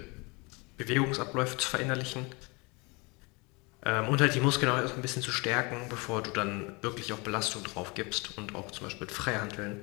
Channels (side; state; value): right; quieter; 27.9 dB